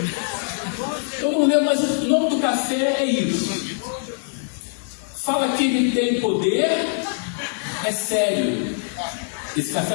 Eu não lembro, mas o nome do café é isso. Fala que ele tem poder, é sério. Esse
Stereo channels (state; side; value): silent; right; digital silence